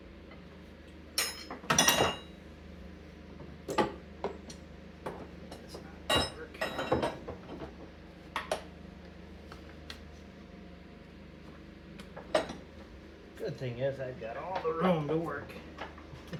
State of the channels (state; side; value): identical; both; correlation 1.00